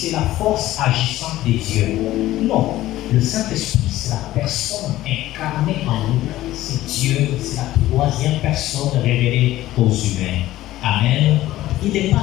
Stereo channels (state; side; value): quieter; right; 15.3 dB